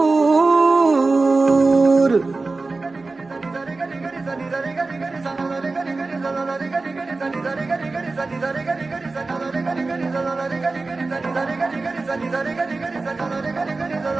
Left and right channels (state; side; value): quieter; left; 3.6 dB